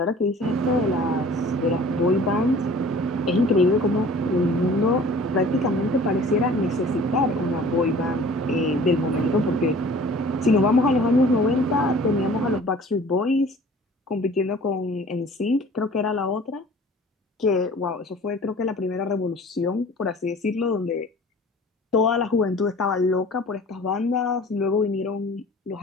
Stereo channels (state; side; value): normal; both; correlation 0.47